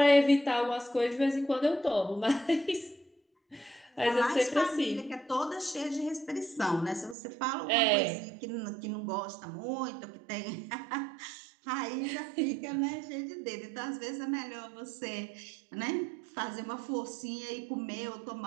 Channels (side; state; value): left; drops out; at 7.2 s